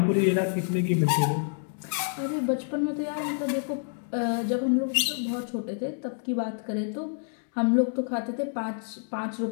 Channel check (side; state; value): right; silent; 59 dB below the other